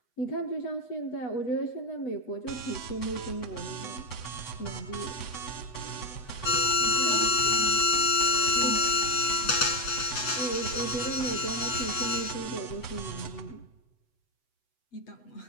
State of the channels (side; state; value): right; late; 8.0 ms